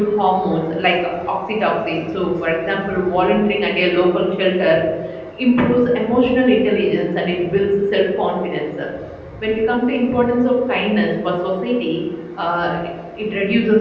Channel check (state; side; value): identical; both; correlation 1.00